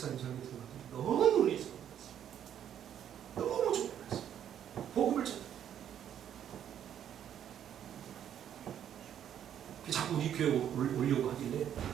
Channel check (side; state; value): left; quieter; 9.8 dB